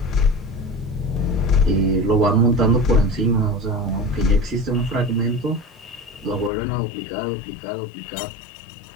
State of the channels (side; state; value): right; drops out; at 6.5 s